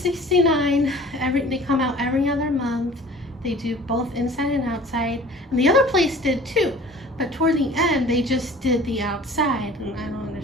$69. They come out every other month. They do both inside and outside, and the other place did too. But toward the end, they just did the outside, and I don't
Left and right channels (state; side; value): normal; both; correlation 0.46